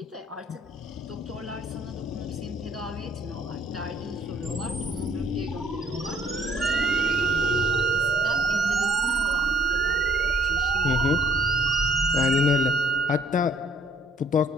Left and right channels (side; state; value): both; normal; correlation 0.62